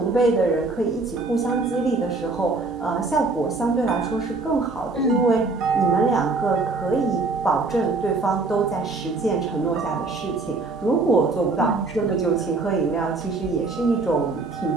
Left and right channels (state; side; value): quieter; left; 3.6 dB